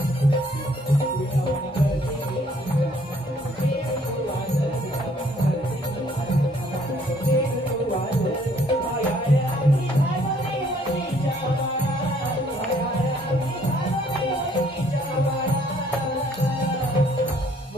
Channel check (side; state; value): both; normal; correlation 0.63